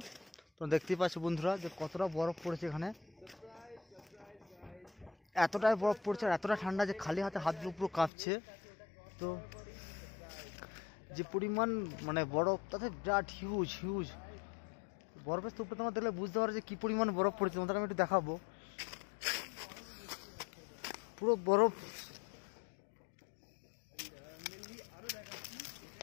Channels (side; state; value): right; drops out; at 8.1 s